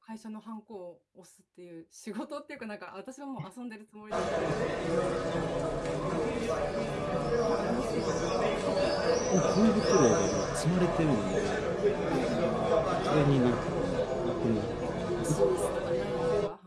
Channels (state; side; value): identical; both; correlation 1.00